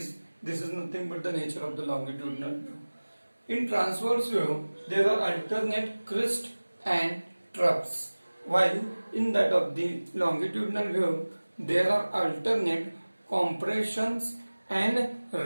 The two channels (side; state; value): both; inverted; correlation -1.00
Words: is nothing but the nature of the longitudinal wave. In transverse wave there are alternate crest and troughs, while in that of the longitudinal wave there are alternate compressions and